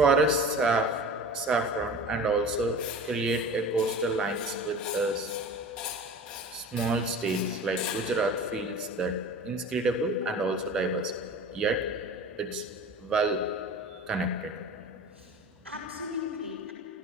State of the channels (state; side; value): normal; both; correlation 0.37